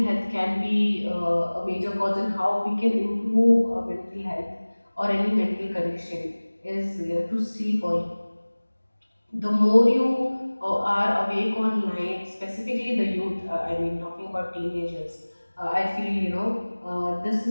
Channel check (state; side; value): inverted; both; correlation -1.00